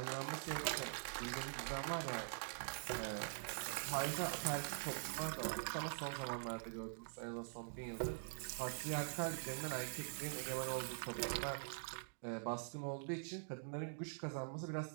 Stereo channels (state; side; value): silent; left; digital silence